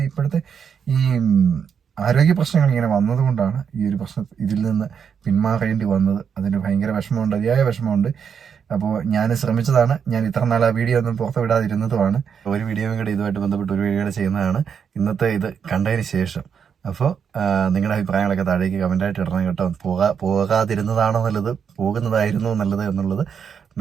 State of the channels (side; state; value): left; quieter; 7.1 dB